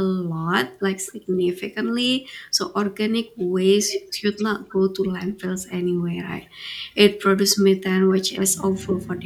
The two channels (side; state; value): both; identical; correlation 1.00